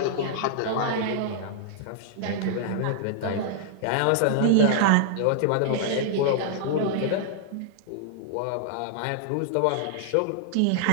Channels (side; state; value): both; different; correlation -0.01